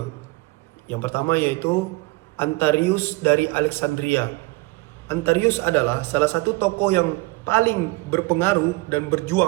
Yang pertama yaitu Antarius dari Alexandria. Antarius adalah salah satu tokoh yang paling berpengaruh dan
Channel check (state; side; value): quieter; left; 23.9 dB